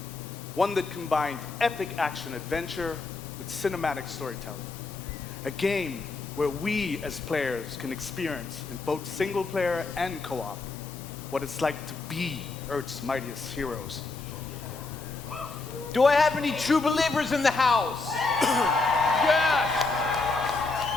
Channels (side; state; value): right; quieter; 3.7 dB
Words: One that combined epic action-adventure with cinematic storytelling. A game where we as players can experience in both single-player and co-op what it's like to be Earth's mightiest heroes. Do I have any true believers in the house? Yes!